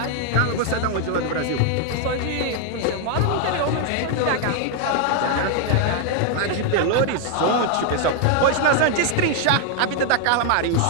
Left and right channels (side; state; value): both; different; correlation 0.00